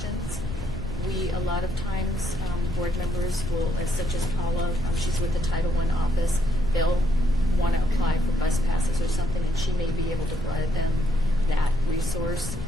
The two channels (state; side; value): noise; left; rumble, 10 dB below the sound